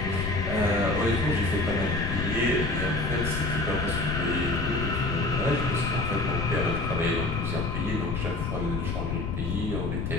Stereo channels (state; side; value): noise; left; rumble, 2 dB below the sound